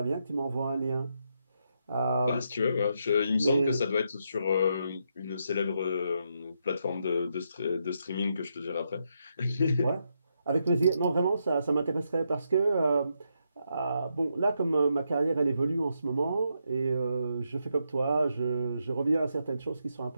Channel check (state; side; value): inverted; both; correlation -0.80